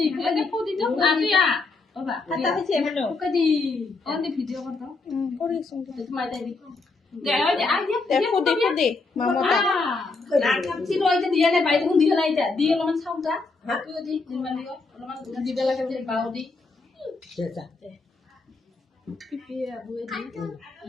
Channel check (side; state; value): right; quieter; 3.8 dB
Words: ফেলে ফুদিতো আতিয়া বাবা খাতা হইছে মানে ওকাদি অন ভিডিও করতো করে শুনতে তোমায় তাই দি দেও যে আইয়া দেখো মামা আর কাপছি রইতে দিয়া না বাইরে কোন দিয়া নাইতা দিয়ে অলমান সাউটা তুই দি নিমান দিও অলমান দিবে লাগে যে বাও দি চেতা পিপি বুয়ে দি